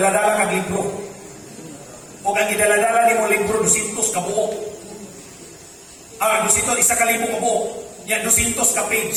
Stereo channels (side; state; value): both; identical; correlation 1.00